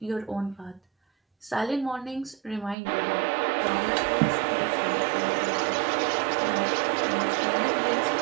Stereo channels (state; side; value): drops out; left; at 2.8 s